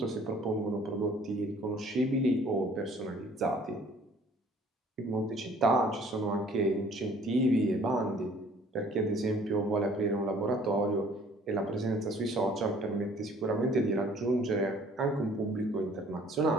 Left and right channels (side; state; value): both; normal; correlation 0.55